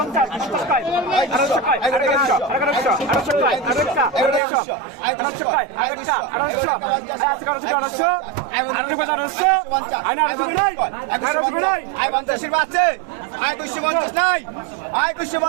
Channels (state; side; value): drops out; left; at 4.4 s